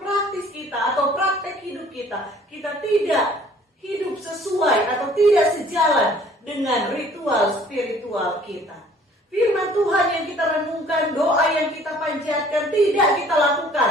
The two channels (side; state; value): both; normal; correlation 0.55